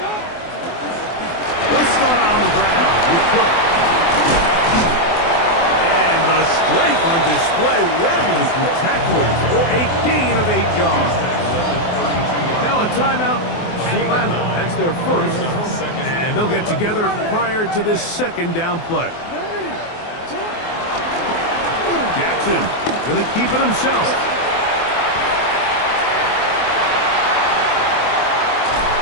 They'll start on the ground with Cook. And the strength on display, rattling through tacklers for a gain of 8 yards. Now a timeout. Atlanta, that's their first, and they'll get together prior to this second down play. Jackson going to keep it himself.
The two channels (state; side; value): late; right; 24 ms